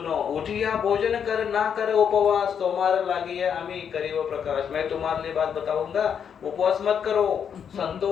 उठिया भोजन कर ना कर उपवास, तुम्हारा लागी है अमी करियो प्रकाश। मैं तुम्हारे लिए बात बताऊंगा, उपवास मत करो,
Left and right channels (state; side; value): quieter; right; 7.7 dB